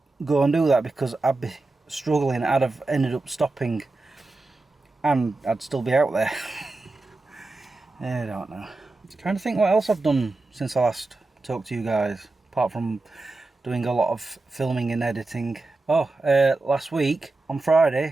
go and do that, because I'd be struggling. I'd have ended up stopping and I'd still be out there. I don't know. I'm trying to think what else I've done since I last talked to you guys, apart from doing a lot of filming and editing. Last week on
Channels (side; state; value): left; quieter; 3.2 dB